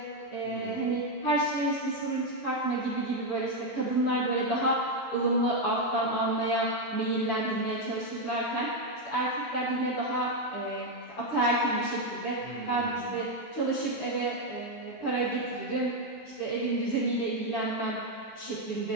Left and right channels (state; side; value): late; right; 19 ms